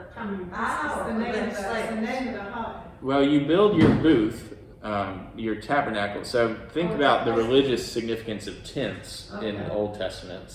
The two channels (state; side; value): identical; both; correlation 1.00